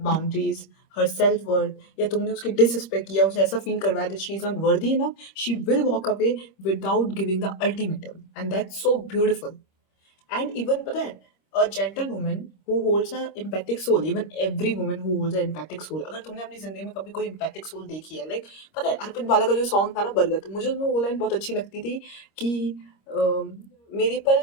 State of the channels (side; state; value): right; late; 26 ms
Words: boundaries, her self worth, या तुमने उसकी डिसरिस्पेक्ट किया, उसे ऐसा फील करवाया that she is not worthy enough, she will walk away without giving the ultimatum, and that's so beautiful. And even पता है, a gentle woman who holds a empathic soul, even every woman who holds a empathic soul, अगर तुमने अपनी जिंदगी में कभी कोई empathic soul देखी है, लाइक पता है अर्पित बाला का जो सॉन्ग था ना बरगद, मुझे उसमें वो लाइन बहुत अच्छी लगती थी कि अम, मेरी पल